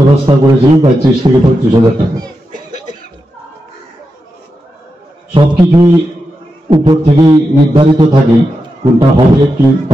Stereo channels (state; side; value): normal; both; correlation 0.88